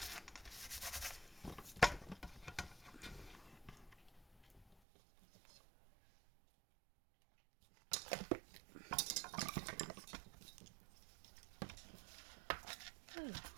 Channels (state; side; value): drops out; left; at 4.8 s